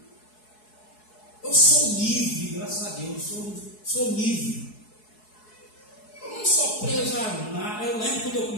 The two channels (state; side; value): late; right; 4.7 ms